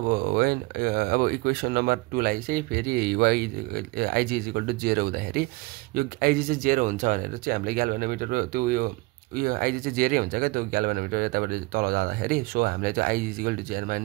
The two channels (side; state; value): left; quieter; 22.8 dB